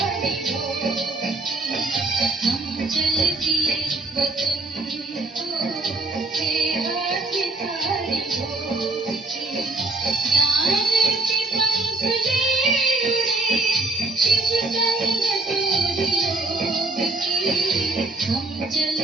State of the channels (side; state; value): left; quieter; 3.1 dB